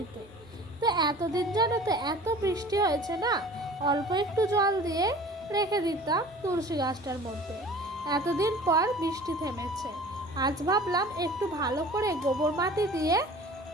তো এতদিন জানো তো এত বৃষ্টি হয়েছে না, অল্প একটু জল দিয়ে রেখে দিতাম তুলসী গাছটার মধ্যে। এতদিন পর বৃষ্টি থেমেছে, আজ ভাবলাম একটু ভালো করে গোবর মাটি দিয়ে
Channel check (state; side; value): normal; both; correlation 0.44